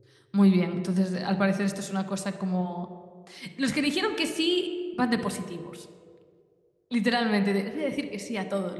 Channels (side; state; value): both; identical; correlation 1.00